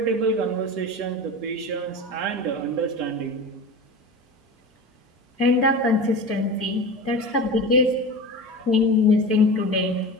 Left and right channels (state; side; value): normal; both; correlation 0.30